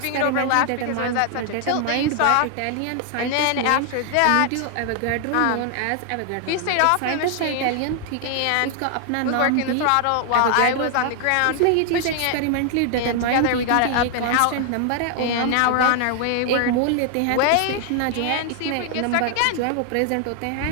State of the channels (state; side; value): different; both; correlation 0.00